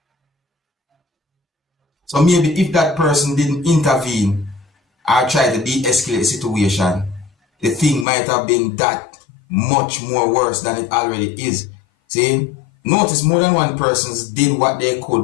So maybe if that person didn't intervene or try to de-escalate the situation, the thing might have been that much more worse than it already is. See, notice more than one person did what they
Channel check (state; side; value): drops out; right; at 8.1 s